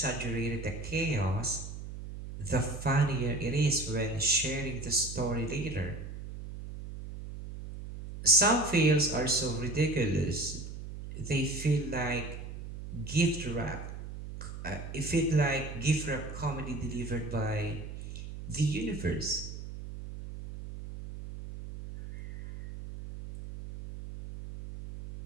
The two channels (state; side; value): noise; right; hum, 10 dB below the sound